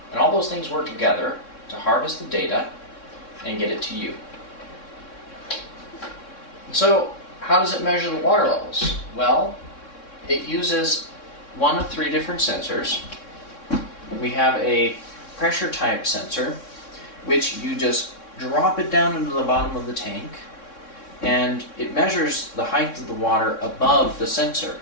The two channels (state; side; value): late; right; 3.6 ms